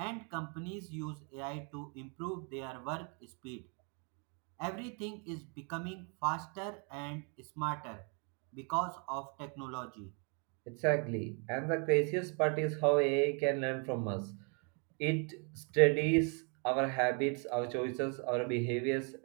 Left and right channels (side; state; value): left; quieter; 36.9 dB